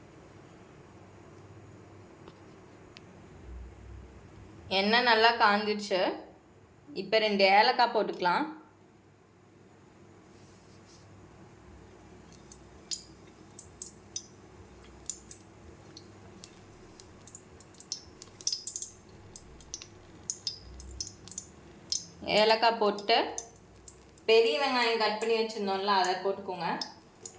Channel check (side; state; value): both; identical; correlation 1.00